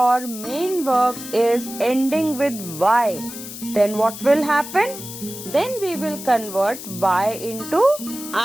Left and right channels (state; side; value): noise; left; hiss, 11 dB below the sound